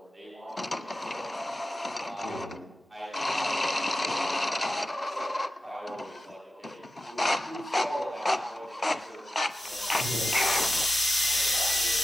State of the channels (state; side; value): normal; both; correlation 0.93